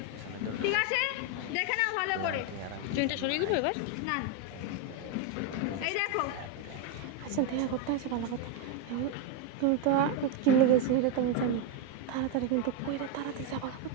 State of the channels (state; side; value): different; both; correlation 0.02